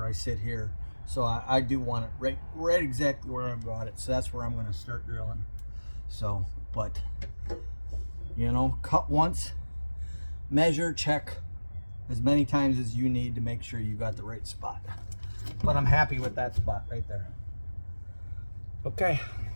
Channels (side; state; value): both; inverted; correlation -1.00